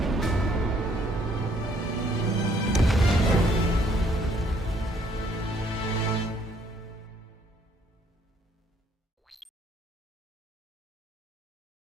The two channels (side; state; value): both; normal; correlation 0.65